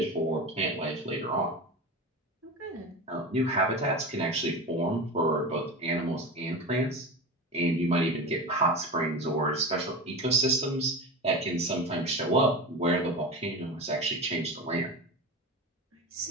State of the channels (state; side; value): normal; both; correlation 0.26